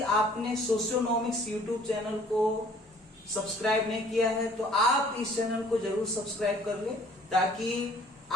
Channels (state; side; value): normal; both; correlation 0.55